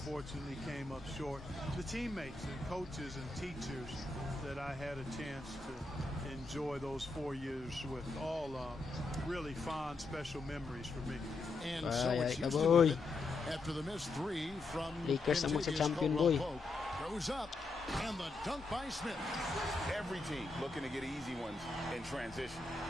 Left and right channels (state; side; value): quieter; right; 3.3 dB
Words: came up short. The teammates and coaches and teachers that I had a chance to enjoy those 4 years with, all really fond, special memories for me. And so it's Houston after the missed 3 from Lakers ang magsa-champion, boy. Goes up, and the dunk by Smith. Every team looking to get easy ones in transition.